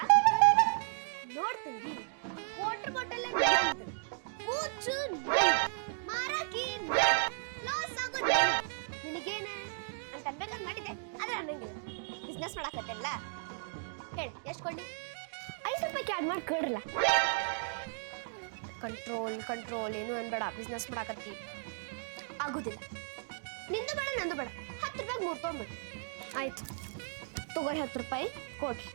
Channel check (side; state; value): left; silent; digital silence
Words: ನೋಡ್ತೀನಿ ವಾಟರ್ ಬಾಟಲ್ ಕೂಚು ಮಾರಾಕಿ ಲಾಸ್ ಆಗೋದು ನಿನಗೇನ ಅಂತ ಅನ್ಬೇಕಂತ ಮಾಡಿದ್ದೆ ಆದ್ರೆ ಅನ್ನಂಗಿಲ್ಲ ಬಿಸ್ನೆಸ್ ಮಾಡಕತ್ತಲ್ಲ ಹೇಳಿ ಎಷ್ಟು ಕೊಳ್ಳಿ 5 ರೂಪಾಯಿಗೆ ಆಡ್ ಮಾಡಿ ಕೇಳ್ರಲ್ಲ ಕಂಟ್ರೋಲ್ ಏನು ಅನ್ಬೇಡ ಬಿಸ್ನೆಸ್ ಮಾಡಾಕತ್ತಿ ಆಗುದಿಲ್ಲ ನಿಂದು ಬೇಡ ನಂದು ಬೇಡ 10 ರೂಪಾಯಿಗೆ 3 ತೊಗೊಂಡ್ಬಿಡು ಆಯ್ತು ತಗೋರಿ 10 ರೂಪಾಯಿ ಕೊಡ್ರಿ